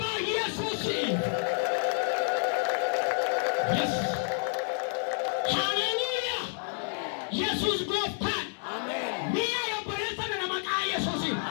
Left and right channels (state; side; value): silent; right; 58 dB below the other